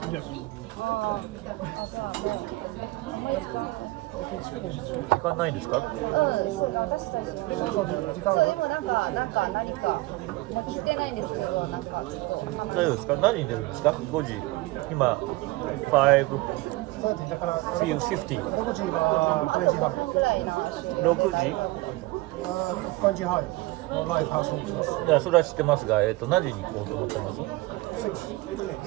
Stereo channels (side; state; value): left; quieter; 20.7 dB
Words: Yes. 時間ないですか？そう私たちそうでもなんか何か聞いてないんですけどなんかちょっと大丈夫ですか？何に出るんですか？5時今だから5:50 6時は5時半。ぐらいの6時5時半のライブハウスに行きます。いやそれは知ってますが、何時に行こうと思ってます？